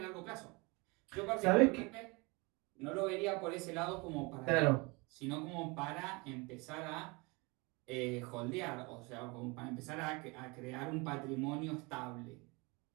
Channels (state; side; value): quieter; left; 26.9 dB